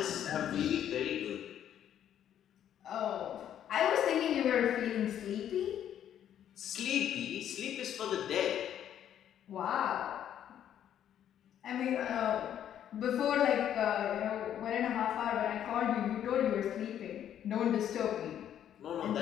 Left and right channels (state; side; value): quieter; right; 10.2 dB